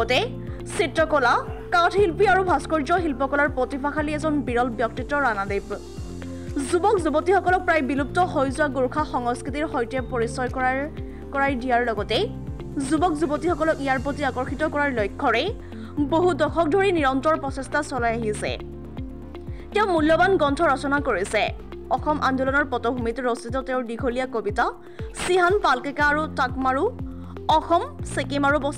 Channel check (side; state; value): both; identical; correlation 1.00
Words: চিত্ৰকলা, কাঠশিল্পী আৰু ভাস্কৰ্য শিল্পকলাৰ প্ৰতিভাশালী এজন বিৰল ব্যক্তিত্ব ৰাণাদেৱ। যুৱক যুৱতীসকলক প্ৰায় বিলুপ্ত হৈ যোৱা গোৰ্খা সংস্কৃতিৰ সৈতে পৰিচয় কৰাই দিয়াৰ লগতে যুৱক যুৱতীসকলক ইয়াৰ প্ৰতি আকৰ্ষিত কৰাৰ লক্ষ্যৰে বহু দশক ধৰি নিৰন্তৰ প্ৰচেষ্টা চলাই আহিছে। তেওঁ মূল্যৱান গ্ৰন্থ ৰচনা কৰিছে। অসম আন্দোলনৰ পটভূমিত ৰচিত তেওঁৰ দীঘলীয়া কবিতা চিহান পালকেকা আৰু টাকমাৰু অসম, ছিকিম আৰু